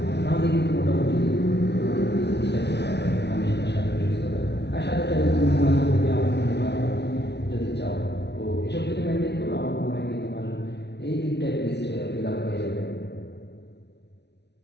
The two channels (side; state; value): right; late; 0.50 ms